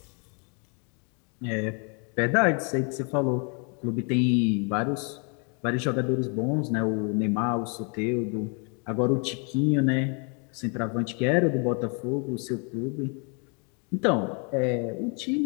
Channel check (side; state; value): right; quieter; 36.7 dB